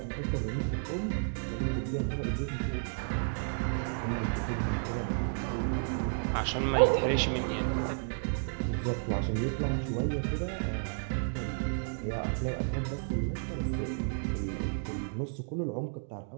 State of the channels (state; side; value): silent; left; digital silence